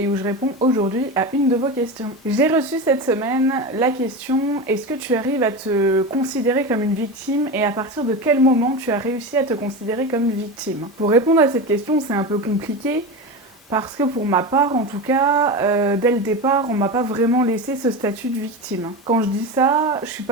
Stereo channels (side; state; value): both; normal; correlation 0.23